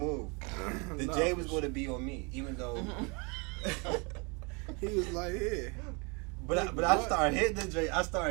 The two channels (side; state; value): left; quieter; 31.6 dB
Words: The Nah, J was going to be on me, even though. He was like, yeah. But I started hitting the J. I